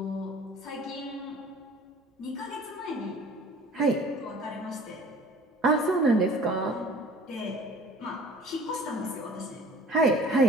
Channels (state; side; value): normal; both; correlation 0.46